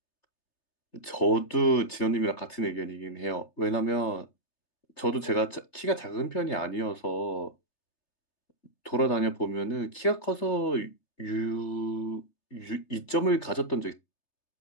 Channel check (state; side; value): late; right; 3.3 ms